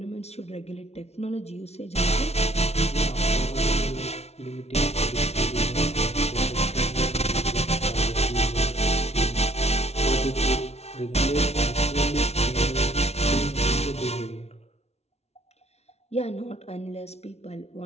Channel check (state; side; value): late; right; 0.31 ms